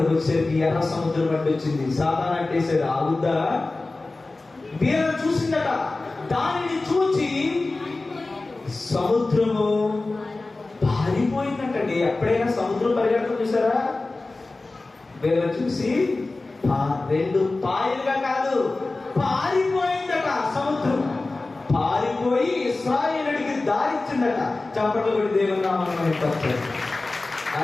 వచ్చేసరికి ఎర్ర సముద్రం అడ్డు వచ్చింది. సాతాను అంటేసాడు, ఆగుద్దా? వీళ్ళని చూసిందట. దానిని చూచి సముద్రము పారిపోయిందంటండి. ఎప్పుడైనా సముద్రం పరిగెడతాం చూసారా? వీళ్ళని చూసి 2 పాయలుగా కాదు, పారిపోయిందట సముద్రం. పారిపోయి ఇశ్రాయేలుడికి దారిచ్చిందట. చప్పట్లు కొట్టి దేవుని నామమున పలికారు.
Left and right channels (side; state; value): right; quieter; 3.3 dB